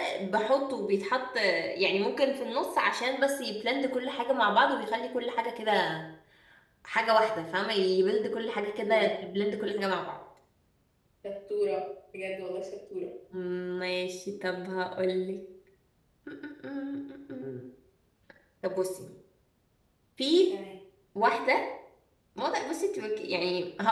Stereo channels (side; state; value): both; identical; correlation 1.00